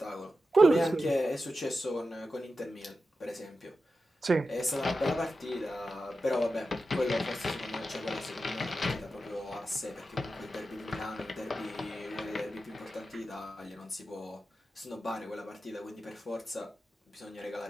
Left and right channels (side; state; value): both; normal; correlation 0.91